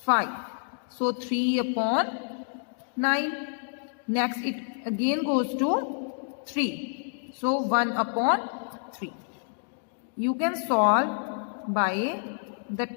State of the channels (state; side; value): silent; right; digital silence